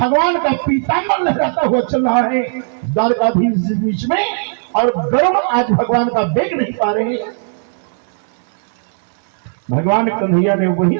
का पीताम्बर लहराता हुआ चल रहा है द्वारकाधीश बीच में, और गरुड़ आज भगवान का वेग नहीं पा रहे। भगवान कन्हैया ने वहीं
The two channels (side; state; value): left; silent; digital silence